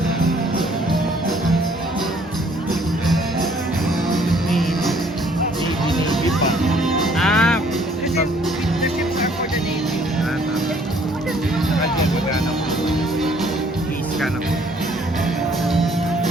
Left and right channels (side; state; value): both; normal; correlation 0.61